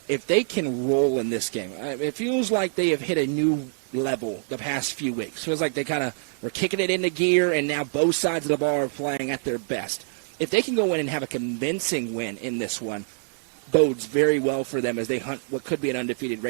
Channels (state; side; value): silent; left; digital silence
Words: if they can roll in this game, it feels like they have hit a new level the past few weeks. It feels like they kind of were kicking it into gear, and now both sides of the ball are playing at their best. If they can go in and have a convincing win in this one, bodes very well for them as they hunt what could be an undefeated